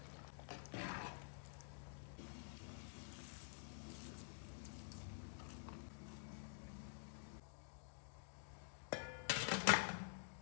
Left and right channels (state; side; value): silent; right; digital silence